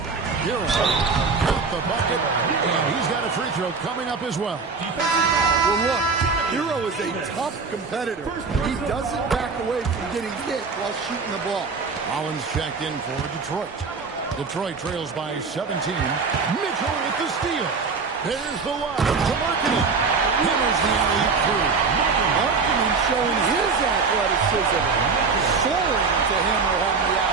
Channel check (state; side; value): quieter; left; 4.8 dB